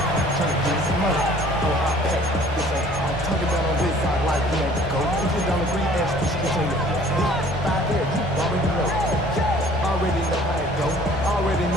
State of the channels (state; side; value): normal; both; correlation 0.53